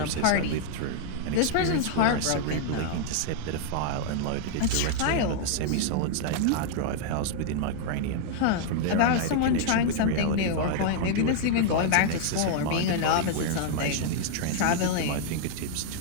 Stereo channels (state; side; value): different; both; correlation -0.01